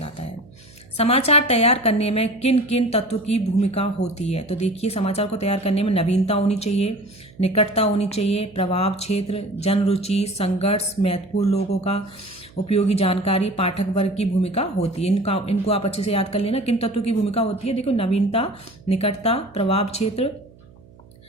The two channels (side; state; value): right; noise; hum, 25 dB below the sound